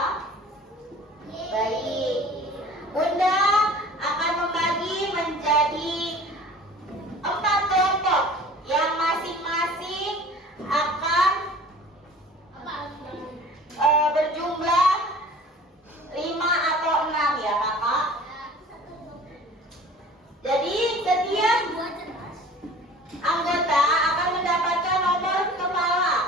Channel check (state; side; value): normal; both; correlation 0.45